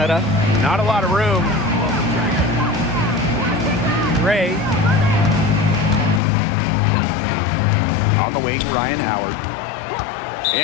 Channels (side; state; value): right; drops out; at 6.2 s